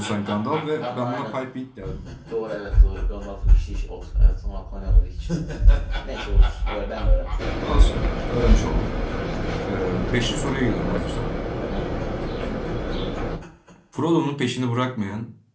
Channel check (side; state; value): both; identical; correlation 1.00